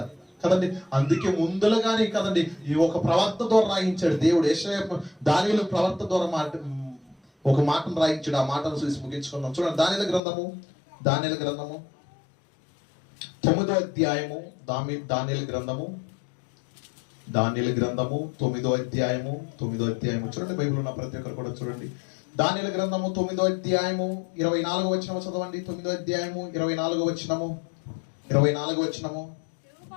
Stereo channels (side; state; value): right; drops out; at 10.2 s